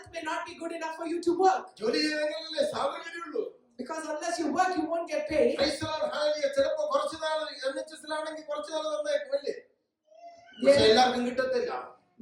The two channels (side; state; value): both; identical; correlation 1.00